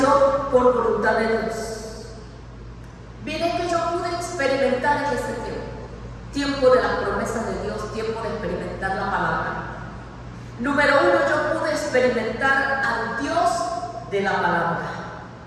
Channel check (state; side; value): identical; both; correlation 1.00